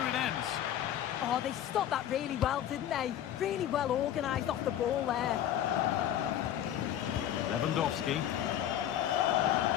it ends. Oh, they stopped that really well, didn't they? Really well organised off the ball there. Lewandowski.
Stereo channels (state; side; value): quieter; right; 11.0 dB